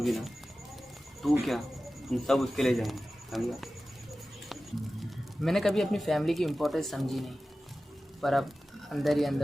ना, तू क्या, तुम सब उसके लिए जाएंगे, समझा? मैंने कभी अपनी फैमिली की इम्पोर्टेंस समझी नहीं, पर अब अंदर ही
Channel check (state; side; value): normal; both; correlation 0.95